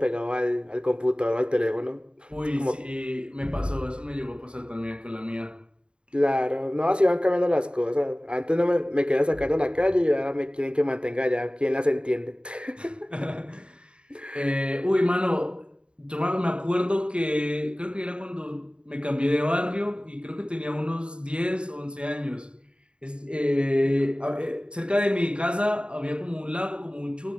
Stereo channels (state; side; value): late; left; 0.054 ms